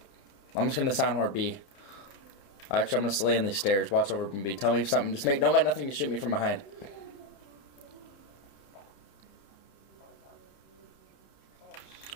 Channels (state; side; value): late; right; 30 ms